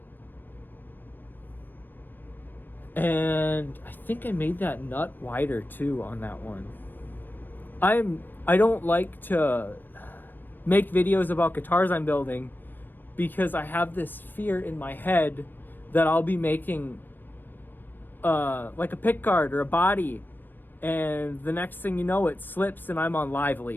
And I think I made that nut wider too on that one. I don't like to make videos about guitars I'm building because I have this fear in my head that I'll be making like a pickguard or a body, and the next thing you know, it slips and I'm on Live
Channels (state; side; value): late; right; 0.092 ms